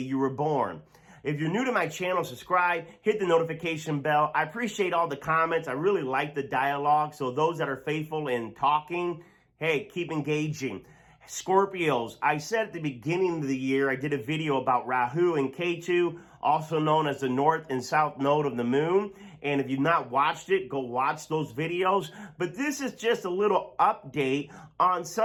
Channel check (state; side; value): identical; both; correlation 1.00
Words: were born. If you're new to my channel, subscribe, hit the notification bell. I appreciate all the comments. I really like the dialogue. So those that are faithful in talking, hey, keep engaging. Scorpios, I said at the beginning of the year, I did a video about Rahu and Ketu, also known as the north and south node of the moon. And if you've not watched it, go watch those videos. But this is just a little update on